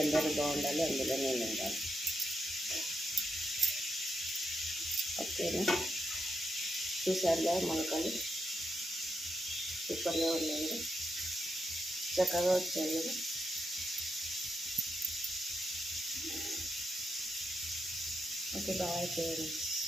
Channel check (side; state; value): both; normal; correlation 0.84